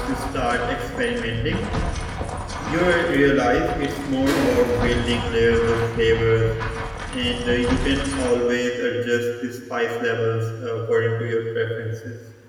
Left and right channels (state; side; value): identical; both; correlation 1.00